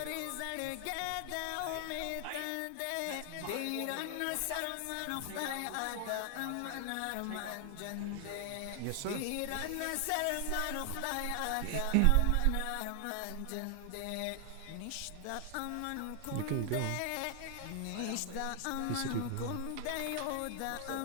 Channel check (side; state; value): both; different; correlation 0.00